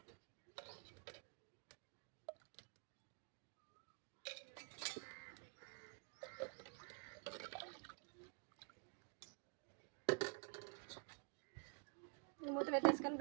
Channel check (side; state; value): left; quieter; 38.8 dB